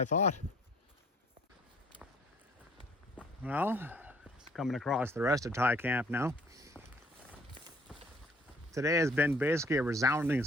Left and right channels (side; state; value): both; normal; correlation 0.59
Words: thought. Well, coming across the rest of Thai Camp now. Today has been basically a resounding